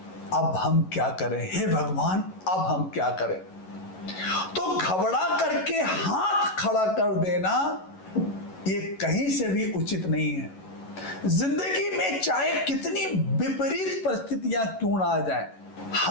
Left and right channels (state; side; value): late; right; 11 ms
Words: अब हम क्या करें, हे भगवान अब हम क्या करें। तो घबरा करके हाथ खड़ा कर देना ये कहीं से भी उचित नहीं है। जिंदगी में चाहे कितनी विपरीत परिस्थितियां क्यों ना आ जाएं,